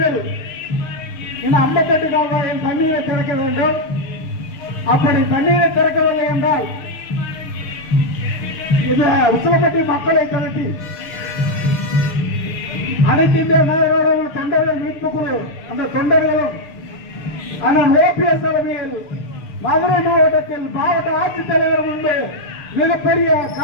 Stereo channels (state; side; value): late; right; 6.7 ms